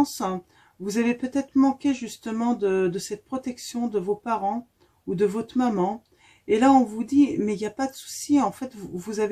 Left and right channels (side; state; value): both; identical; correlation 1.00